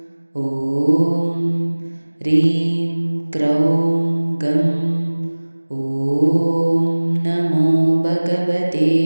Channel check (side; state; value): both; inverted; correlation -1.00